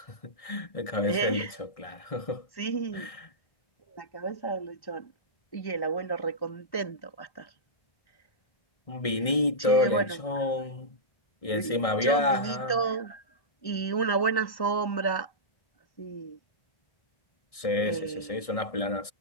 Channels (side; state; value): right; late; 1.6 ms